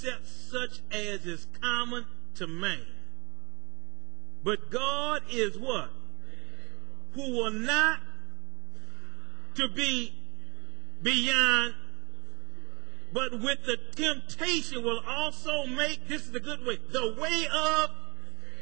such as is common to man. But God is what? Who will not to be beyond, but with the temptation will also make, this is the good way, the way of,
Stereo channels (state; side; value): quieter; left; 27.3 dB